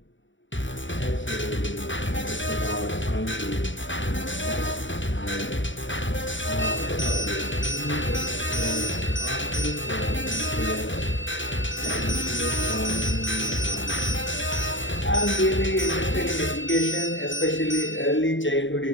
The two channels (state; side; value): late; right; 0.55 ms